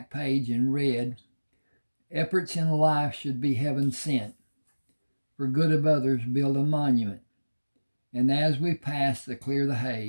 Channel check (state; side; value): inverted; both; correlation -1.00